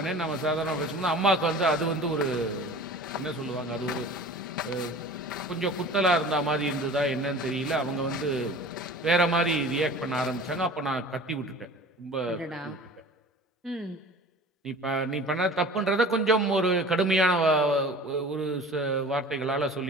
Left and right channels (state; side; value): normal; both; correlation 0.41